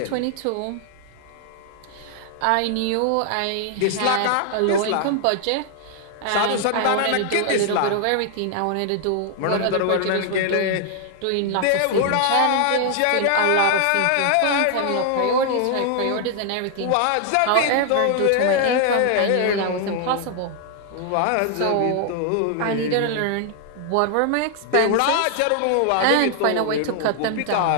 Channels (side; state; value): both; different; correlation 0.00